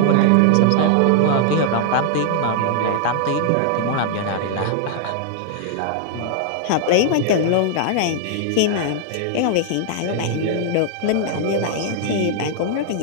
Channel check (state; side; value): different; both; correlation -0.01